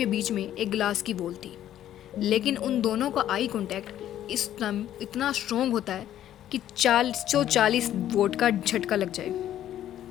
बीच में एक ग्लास की वॉल थी, लेकिन उन दोनों का आई कांटेक्ट इतना स्ट्रॉन्ग होता है कि 440 वोट का झटका लग जाए।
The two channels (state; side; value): quieter; right; 11.7 dB